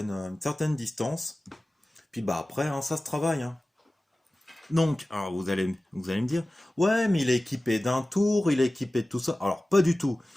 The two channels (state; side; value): normal; both; correlation 0.97